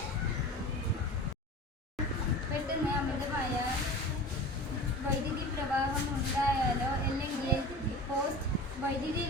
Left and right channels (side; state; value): both; normal; correlation 0.35